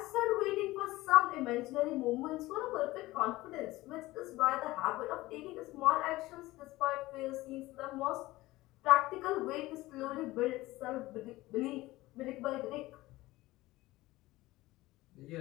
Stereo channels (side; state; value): right; quieter; 18.6 dB